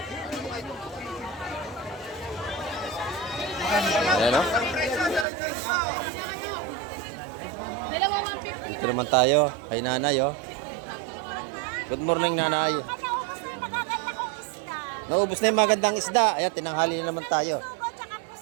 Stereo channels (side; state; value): left; drops out; at 5.2 s